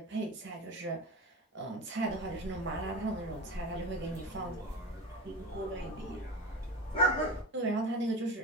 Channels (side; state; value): both; normal; correlation 0.29